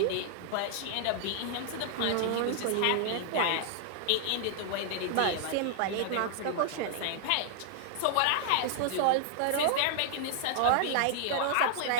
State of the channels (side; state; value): both; different; correlation 0.00